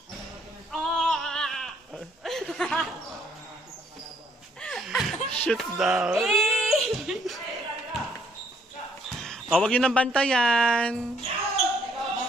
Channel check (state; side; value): normal; both; correlation 0.66